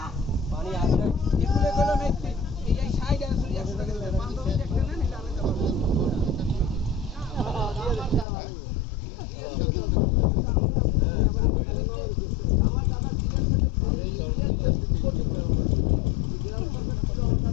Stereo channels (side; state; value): right; drops out; at 8.2 s